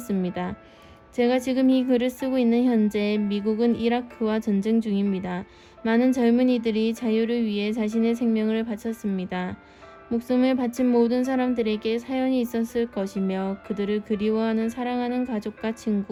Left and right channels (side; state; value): both; identical; correlation 1.00